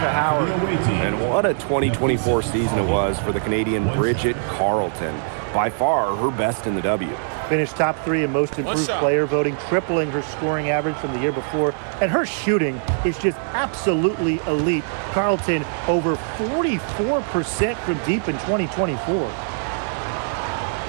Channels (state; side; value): silent; left; 64 dB below the other